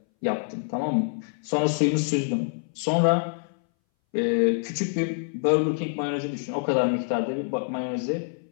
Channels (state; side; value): silent; right; 60 dB below the other